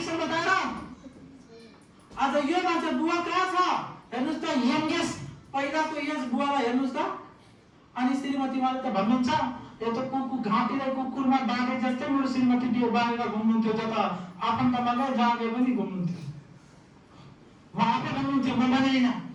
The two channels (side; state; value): both; identical; correlation 1.00